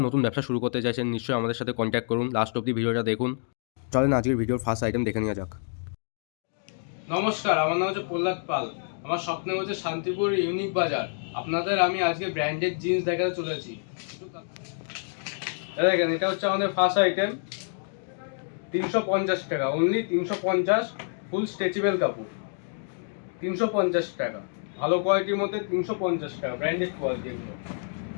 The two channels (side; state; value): right; silent; digital silence